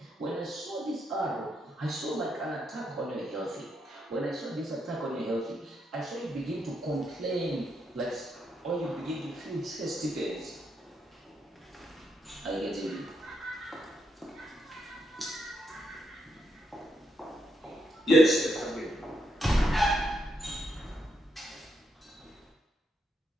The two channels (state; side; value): normal; both; correlation 0.79